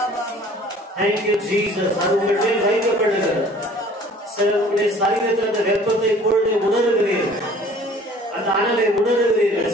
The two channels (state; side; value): normal; both; correlation 0.51